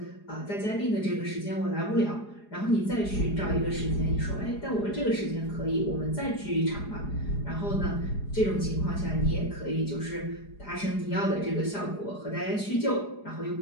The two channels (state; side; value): late; right; 4.8 ms